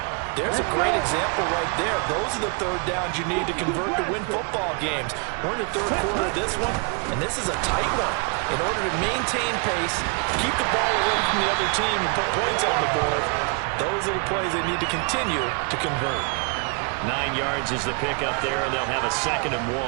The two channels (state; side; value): quieter; left; 35.9 dB